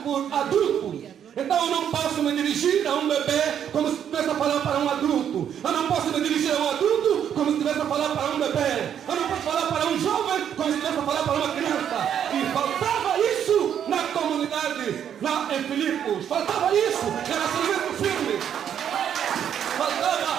por adultos. Então eu não posso me dirigir a um bebê como se estivesse a falar para um adulto. Eu não posso me dirigir a um adulto como se estivesse a falar para um bebê. Eu não posso falar para um jovem como se estivesse a falar para uma criança. E faltava isso na comunidade, em Filipos. Faltava isso, relacionamento firme.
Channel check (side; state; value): left; quieter; 9.0 dB